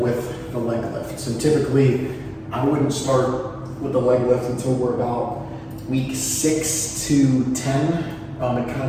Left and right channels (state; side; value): identical; both; correlation 1.00